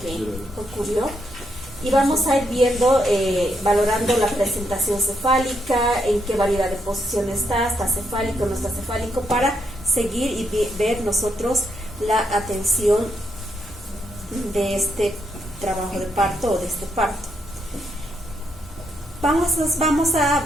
ocurrió. Y vamos a ir viendo, valorando la presentación cefálica, en qué variedad de posición está cefálico, no está cefálico, para seguir y ver nosotros la atención de este trabajo de parto o de este parto.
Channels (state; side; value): normal; both; correlation 0.78